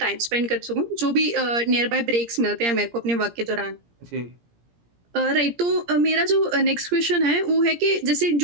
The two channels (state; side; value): late; left; 17 ms